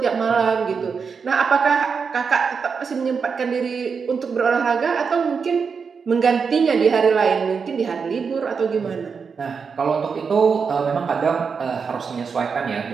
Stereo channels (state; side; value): quieter; left; 5.7 dB